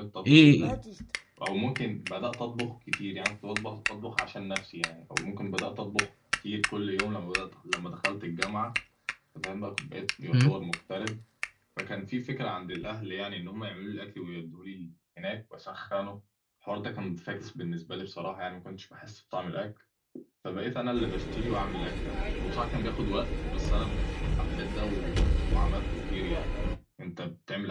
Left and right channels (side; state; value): both; identical; correlation 1.00